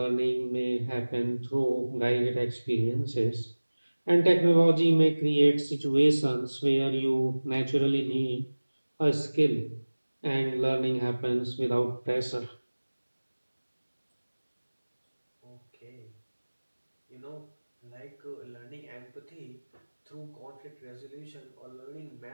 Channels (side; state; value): both; inverted; correlation -1.00